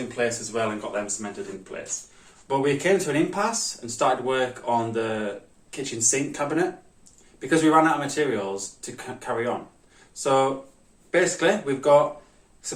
place as well and got them cemented in place. But we came to an impasse and started work on the kitchen sink cabinet because we ran out of materials to carry on. So basically we've got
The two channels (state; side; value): identical; both; correlation 1.00